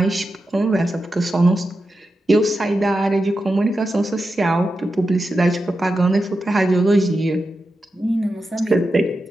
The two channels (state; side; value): normal; both; correlation 0.89